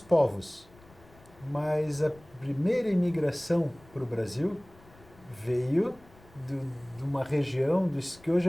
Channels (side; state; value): left; noise; rumble, 25 dB below the sound